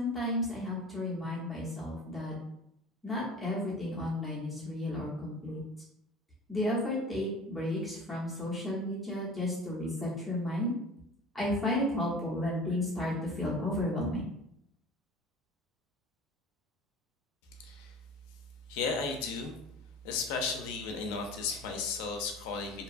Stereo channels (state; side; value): normal; both; correlation 0.39